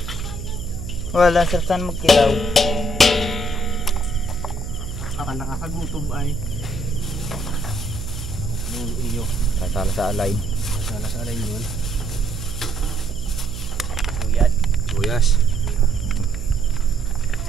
Wala, sartan magkilaw. Akala kakagutom ay. Yung iyo. Sasala sa alay. Masala sa alay yun. Buyat. Tuyas.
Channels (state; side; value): noise; right; hum, 9 dB below the sound